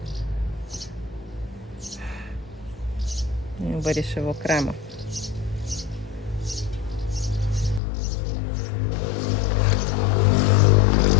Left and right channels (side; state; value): right; drops out; at 7.8 s